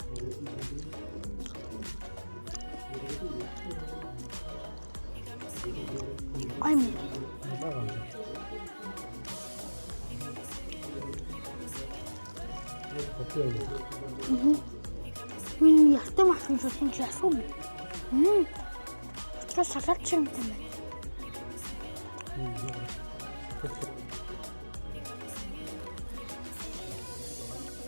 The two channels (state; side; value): inverted; both; correlation -1.00